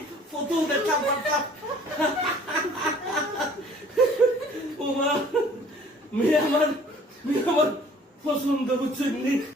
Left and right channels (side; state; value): both; normal; correlation 0.53